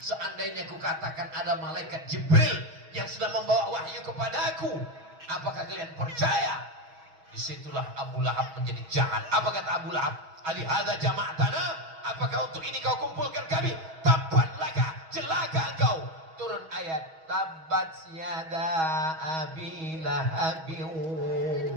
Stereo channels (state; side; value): late; left; 6.3 ms